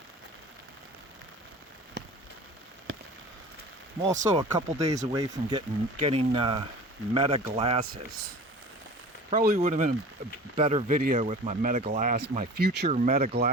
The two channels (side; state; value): both; normal; correlation 0.39